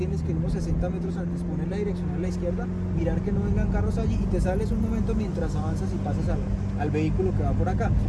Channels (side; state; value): both; identical; correlation 1.00